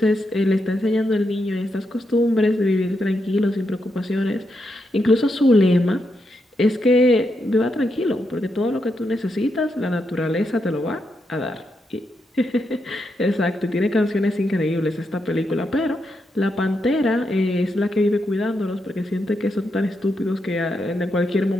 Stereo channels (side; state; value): both; normal; correlation 0.83